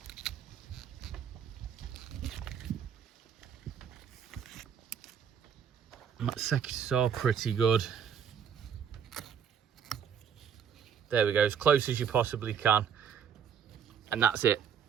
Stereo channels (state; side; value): quieter; left; 7.8 dB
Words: That secateurs are pretty good. There we go, as close as you possibly can. And that's it.